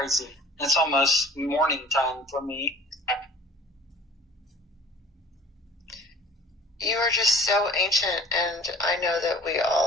It's almost morning time for me. You are just so ancient, and I know that we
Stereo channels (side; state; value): both; normal; correlation 0.47